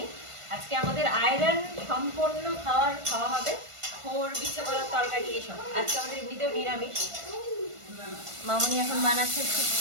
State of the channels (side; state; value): left; late; 1.5 ms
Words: আজকে আমাদের আয়রন সম্পন্ন খাওয়া হবে। খোর, বিচ্ছে কলার তরকারি এসব। আজকে আমাদের এমনিতেও নিরামিষ। মামুনি এখন বানাচ্ছে